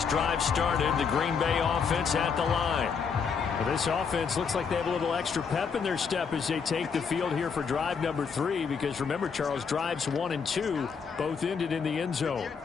drive started. The Green Bay offense at the line. Well, this offense looks like they have a little extra pep in their step as they take the field here for drive number 3. Because remember, Charles, drives 1 and 2 both ended in the end zone.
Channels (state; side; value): quieter; right; 6.0 dB